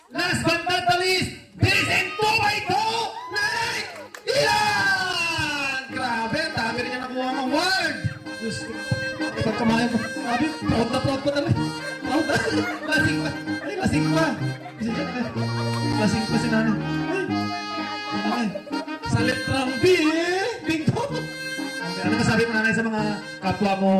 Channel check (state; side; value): identical; both; correlation 1.00